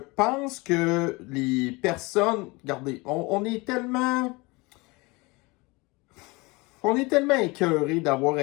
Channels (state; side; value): quieter; right; 25.0 dB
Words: que les personnes, regardez, on est tellement écœurés d'avoir